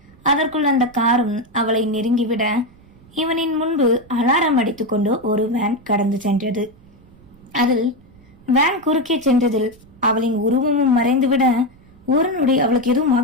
அதற்குள் அந்த காரும் அவளை நெருங்கிவிட இவனின் முன்பு அலாரம் அடித்துக் கொண்டு ஒரு வேன் கடந்து சென்றது. அதில் வேன் குறுக்கே சென்றதில் அவளின் உருவமும் மறைந்துவிட ஒரு நொடி அவளுக்கு எதுவும்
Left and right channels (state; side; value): noise; right; rumble, 26 dB below the sound